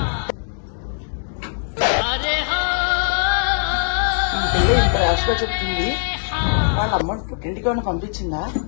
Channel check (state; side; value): silent; right; digital silence